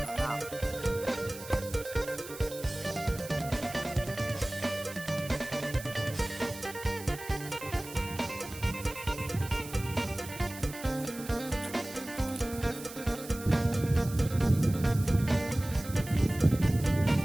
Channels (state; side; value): noise; right; hiss, 14 dB below the sound